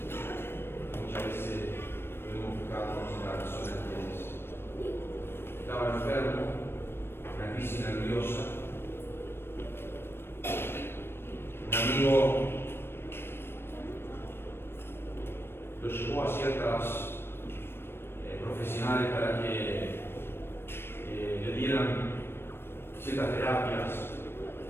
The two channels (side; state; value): right; late; 0.11 ms